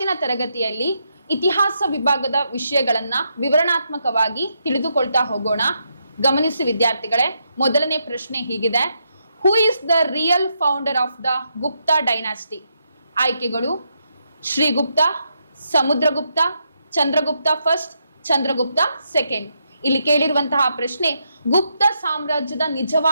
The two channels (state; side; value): inverted; both; correlation -0.80